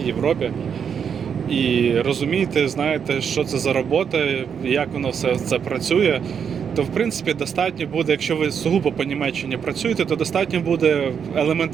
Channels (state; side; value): quieter; left; 7.3 dB